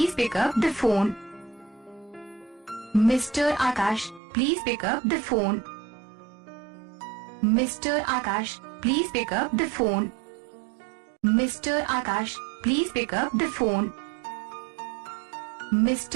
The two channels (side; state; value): left; drops out; at 4.2 s